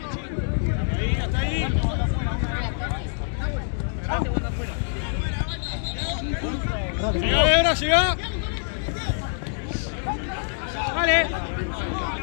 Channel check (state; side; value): silent; right; 62 dB below the other